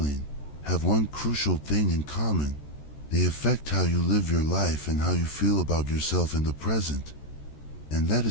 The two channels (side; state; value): right; late; 14 ms